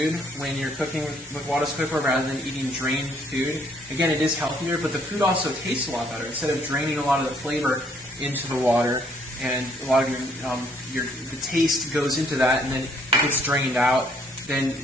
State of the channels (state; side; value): normal; both; correlation 0.66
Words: when you're cooking with Cutco Cookware rather than eating drained food, again, it is healthier, but the food also tastes a lot better. Instead of draining a lot of the flavor into the water, and a lot of the taste goes into that and then it gets drained out, then